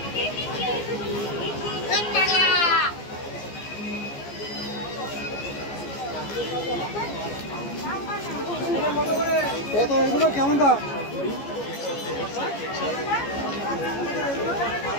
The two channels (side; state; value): right; late; 14 ms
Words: এগুলো কেমন দাম?